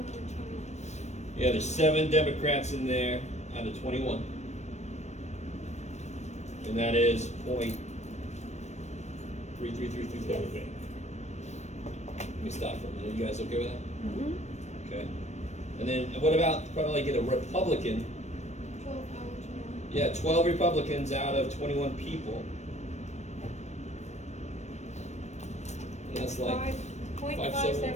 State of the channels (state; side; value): late; right; 0.33 ms